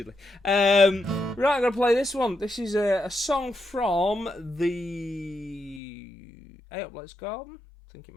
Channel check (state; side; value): drops out; right; at 5.8 s